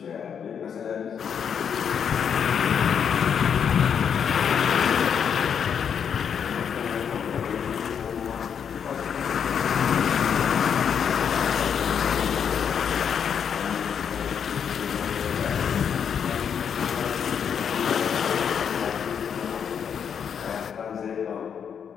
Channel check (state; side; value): quieter; right; 7.6 dB